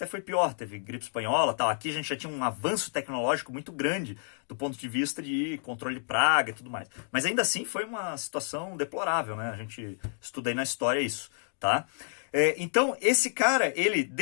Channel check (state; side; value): silent; right; digital silence